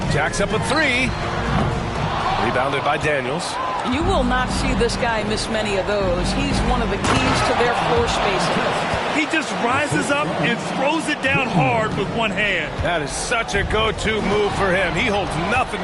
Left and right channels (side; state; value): both; identical; correlation 1.00